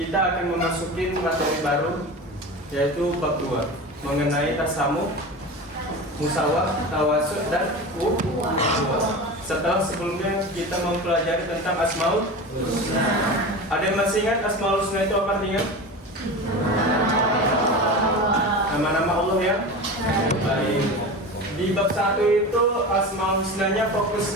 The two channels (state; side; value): normal; both; correlation 0.29